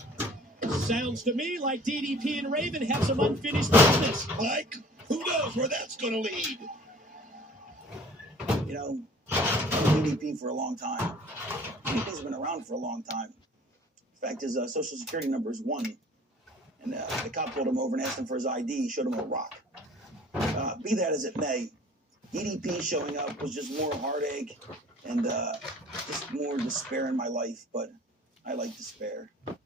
Sounds to me like DDP and Raven have some unfinished business. Mike, who knows where that's going to lead? You know, I've been DDP for a long time. DDP's been around for a long time. In fact, his social security number is 1. And the cop pulled him over and asked him for his ID. He showed him a rock. Be that as it may, DDP showing up was just more heartache and just more despair in my life. But I like despair.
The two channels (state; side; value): normal; both; correlation 0.50